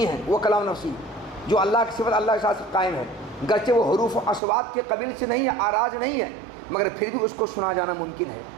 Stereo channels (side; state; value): left; drops out; at 4.4 s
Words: ہیں وہ کلام نفسی جو اللہ کی صفت اللہ کے ساتھ قائم ہے، گرچہ وہ حروف و اصوات کے قبیل سے نہیں ہے، آراز نہیں ہے، مگر پھر بھی اس کو سنا جانا ممکن ہے۔